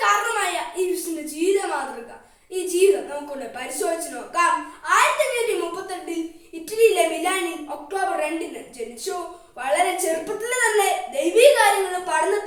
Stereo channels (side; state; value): both; identical; correlation 1.00